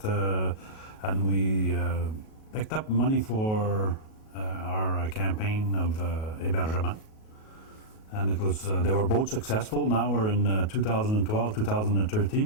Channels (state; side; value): late; right; 37 ms